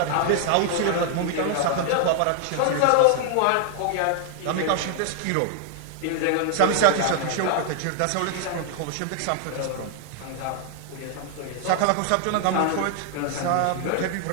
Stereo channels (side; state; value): both; different; correlation 0.00